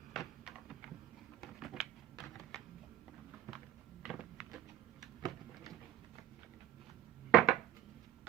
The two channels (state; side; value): quieter; left; 11.8 dB